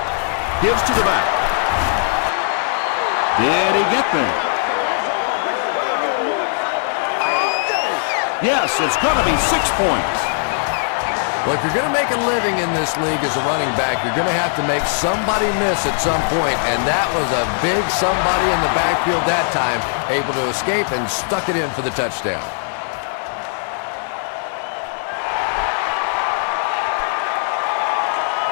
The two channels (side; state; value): right; silent; digital silence